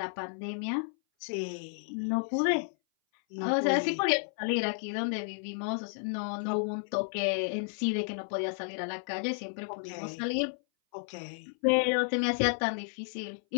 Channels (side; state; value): right; silent; 56 dB below the other